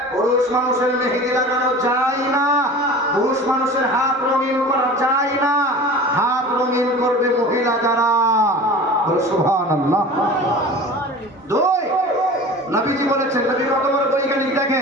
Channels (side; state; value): both; normal; correlation 0.38